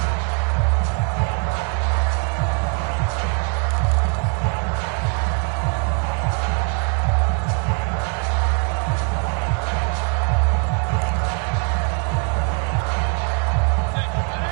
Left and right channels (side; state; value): left; quieter; 36.1 dB